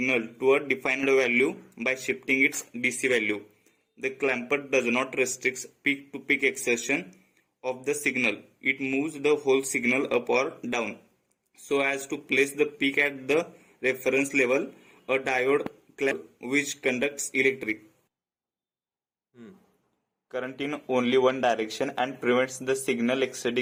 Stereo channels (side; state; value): both; identical; correlation 1.00